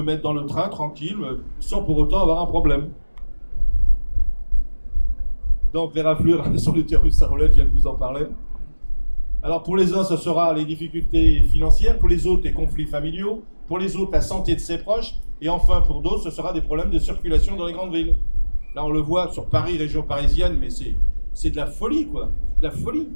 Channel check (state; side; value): inverted; both; correlation -1.00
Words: mettre dans le train tranquille, sans pour autant avoir un problème. Donc les raflures sur l'utérus à roulette, je viens de vous en parler. Alors pour les uns, ce sera les difficultés financières, pour les autres, les conflits familiaux, pour les autres, la santé de ses proches, et enfin pour d'autres, ce sera des problèmes de circulation dans les grandes villes. Là, on le voit sur Paris, région parisienne, mais c'est de la folie, quoi. De la folie.